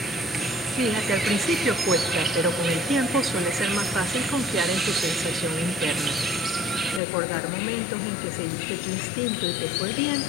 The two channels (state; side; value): drops out; right; at 7.0 s